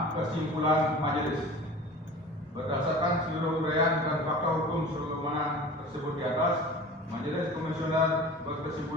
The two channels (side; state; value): both; normal; correlation 0.39